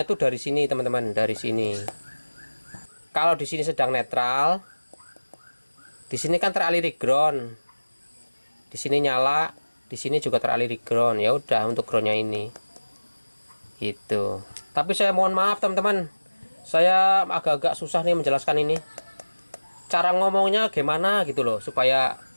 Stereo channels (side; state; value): both; inverted; correlation -1.00